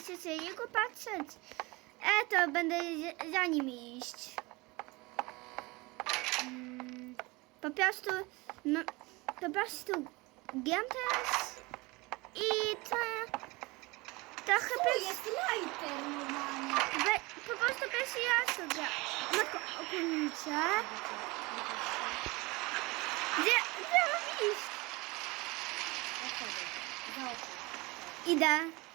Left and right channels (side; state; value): left; quieter; 23.9 dB